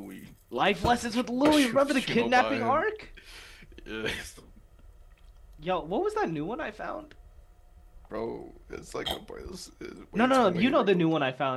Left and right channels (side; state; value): both; identical; correlation 1.00